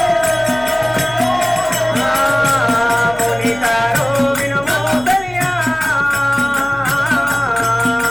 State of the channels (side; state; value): left; noise; hum, 19 dB below the sound